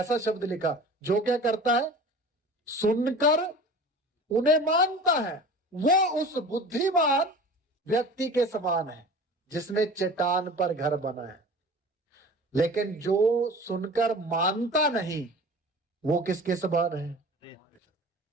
शब्द लिखा, जो क्या करता है? सुनकर उन्हें मानता है, वो उस बुद्धिमान व्यक्ति के समान है जिसने चट्टान पर घर बनाया। लेकिन जो सुनकर मानता नहीं वो किसके समान है?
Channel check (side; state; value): both; normal; correlation 0.39